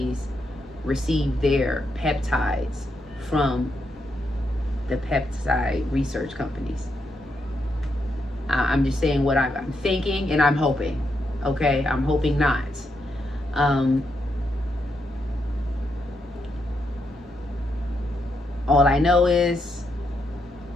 receive their peptides from the peptide research companies. I'm just saying what I'm thinking, and I'm hoping. Okay, I'm hoping not. All I know is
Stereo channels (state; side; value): normal; both; correlation 0.81